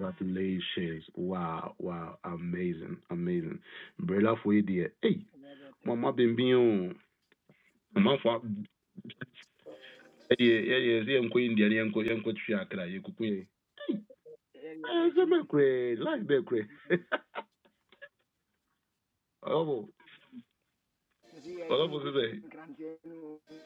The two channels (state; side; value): identical; both; correlation 1.00